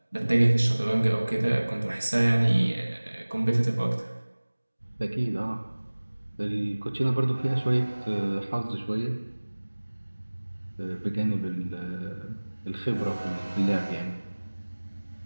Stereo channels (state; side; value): inverted; both; correlation -1.00